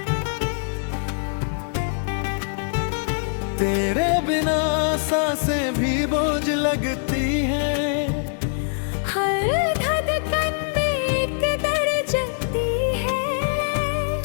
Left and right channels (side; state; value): right; silent; digital silence